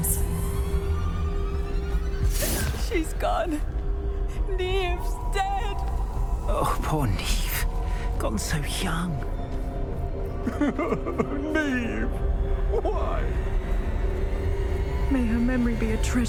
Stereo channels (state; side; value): identical; both; correlation 1.00